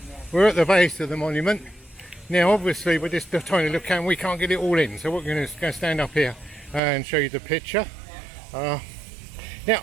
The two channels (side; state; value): left; drops out; at 6.8 s